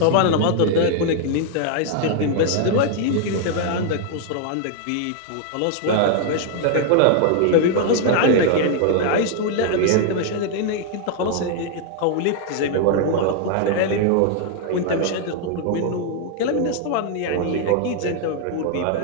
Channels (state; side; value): different; both; correlation 0.00